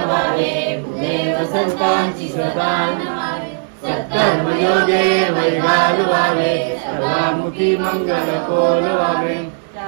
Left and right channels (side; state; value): left; silent; digital silence